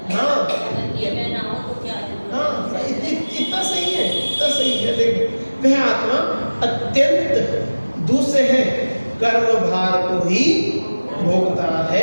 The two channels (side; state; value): both; inverted; correlation -1.00